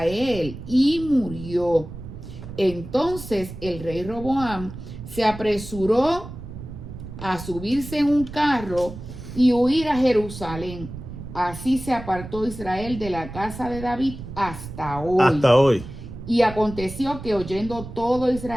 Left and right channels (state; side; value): noise; right; rumble, 12 dB below the sound